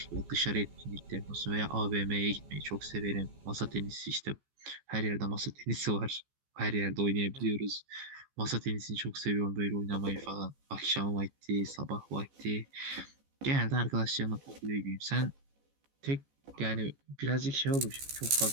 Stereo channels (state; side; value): late; left; 14 ms